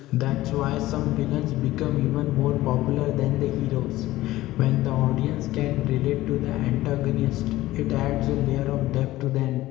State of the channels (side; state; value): right; quieter; 16.6 dB